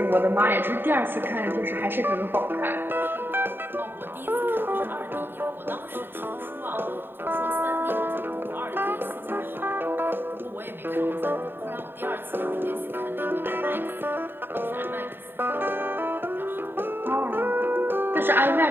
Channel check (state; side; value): late; left; 0.098 ms